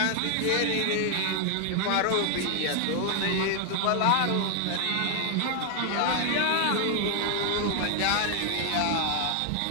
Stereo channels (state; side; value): different; both; correlation 0.00